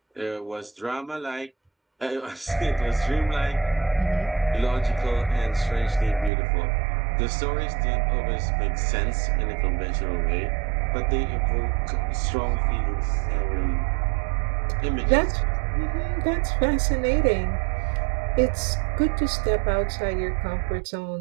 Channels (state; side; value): drops out; left; at 6.3 s